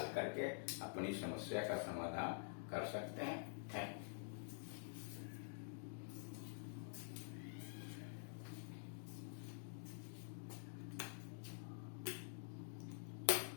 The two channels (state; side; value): silent; right; digital silence